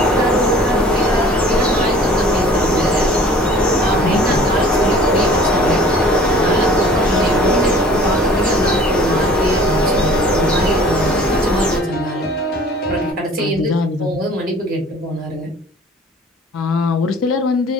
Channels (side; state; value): both; normal; correlation 0.49